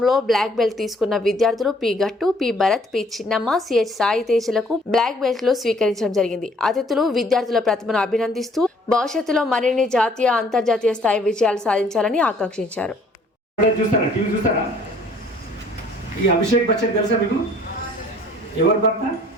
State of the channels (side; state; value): both; normal; correlation 0.59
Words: బ్లాక్ బెల్ట్ తీసుకున్న విద్యార్థులు P Gattu, P Bharat, P Chinnamma, CH Sai తేజలకు బ్లాక్ బెల్ట్లు స్వీకరించడం జరిగింది. అతిథులు విద్యార్థుల ప్రతిభను అభినందిస్తూ భవిష్యత్తులో మరిన్ని జాతీయ, అంతర్జాతీయ స్థాయి విజయాలు సాధించాలని ఆకాంక్షించారు. ఎవరు భర్త?